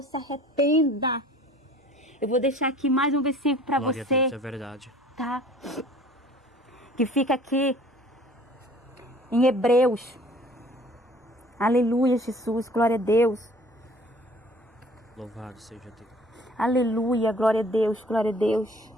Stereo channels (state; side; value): normal; both; correlation 0.51